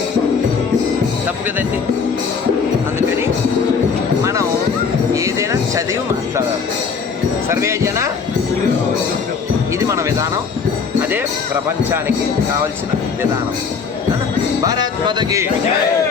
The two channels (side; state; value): right; quieter; 5.6 dB